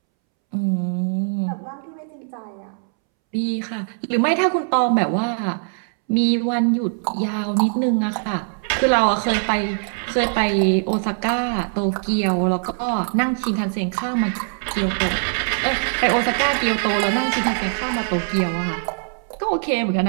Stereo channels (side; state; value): left; silent; 64 dB below the other